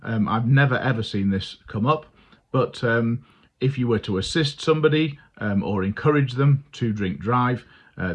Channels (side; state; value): both; identical; correlation 1.00